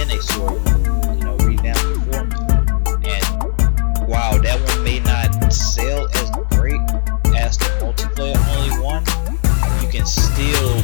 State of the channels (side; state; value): right; silent; digital silence